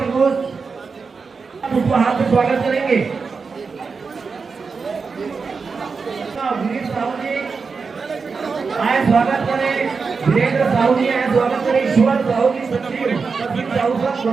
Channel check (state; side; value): quieter; left; 4.9 dB